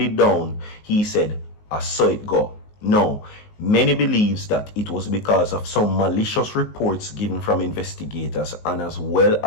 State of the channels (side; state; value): right; late; 19 ms